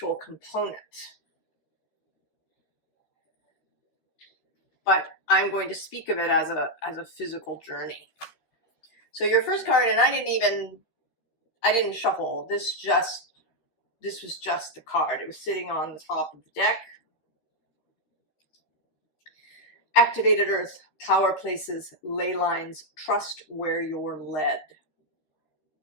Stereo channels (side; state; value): right; late; 13 ms